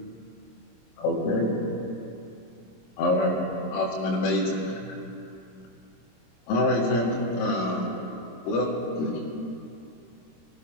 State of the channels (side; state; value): right; late; 26 ms